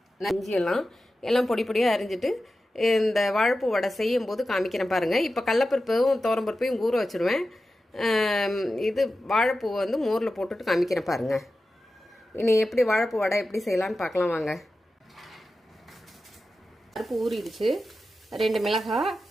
எல்லாம் பொடி பொடியாக அரிஞ்சிட்டு இந்த வாழைப்பூ வடை செய்யும் போது காமிக்கிறேன் பாருங்கள். இப்போ கடலப்பருப்பும் துவரம்பருப்பையும் ஊற வச்சுருவேன். இது வாழைப்பூ வந்து மோரில் போட்டுட்டு காமிக்கிறேன் பாருங்கள். இனி எப்படி வாழைப்பூ வடை எப்படி செய்யலான்னு பார்க்கலாம் வாங்க. பருப்பு ஊறிடுச்சு. 2 மிளகாய்,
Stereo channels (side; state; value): both; normal; correlation 0.93